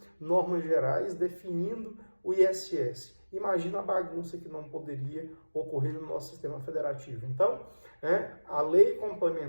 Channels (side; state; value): both; inverted; correlation -1.00